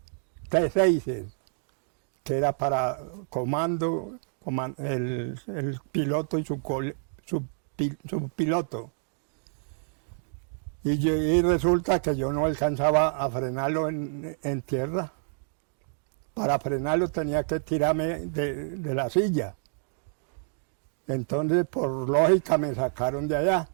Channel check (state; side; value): silent; left; digital silence